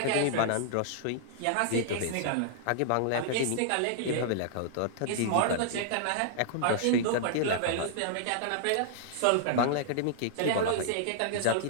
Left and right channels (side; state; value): both; different; correlation -0.01